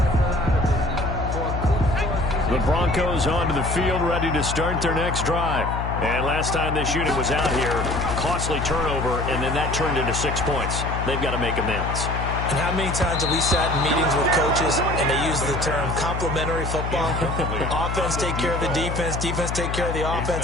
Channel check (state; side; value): noise; left; hum, 3 dB below the sound